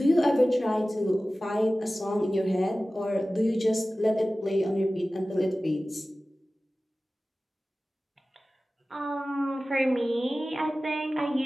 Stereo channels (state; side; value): normal; both; correlation 0.96